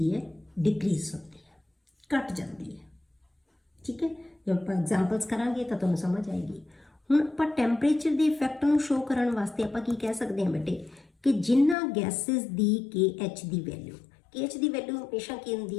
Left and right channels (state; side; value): drops out; right; at 11.8 s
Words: ਹੈ? ਡਿਕਰੀਜ਼ ਹੁੰਦੀ ਹੈ, ਘਟ ਜਾਂਦੀ ਹੈ। ਠੀਕ ਹੈ, ਜੇ ਆਪਾਂ ਐਗਜ਼ਾਮਪਲਸ ਕਰਾਂਗੇ ਤਾਂ ਤੁਹਾਨੂੰ ਸਮਝ ਆਏਗੀ। ਹੁਣ ਆਪਾਂ ਟੈਂਪਰੇਚਰ ਦੇ ਇਫੈਕਟ ਨੂੰ ਸ਼ੋ ਕਰਨ ਵਾਸਤੇ ਆਪਾਂ ਕੀ ਕਹਿ ਸਕਦੇ ਹਾਂ ਬੇਟੇ ਕਿ ਜਿਨ੍ਹਾਂ ਗੈਸਿਸ ਦੀ KH ਦੀ ਵੈਲਿਊ, KH ਦੀ ਵੈਲਿਊ ਹਮੇਸ਼ਾ ਕੀ